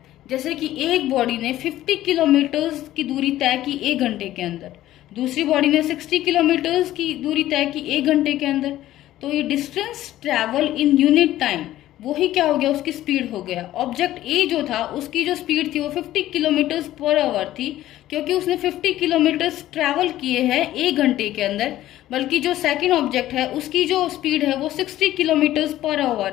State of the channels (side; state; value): right; quieter; 14.2 dB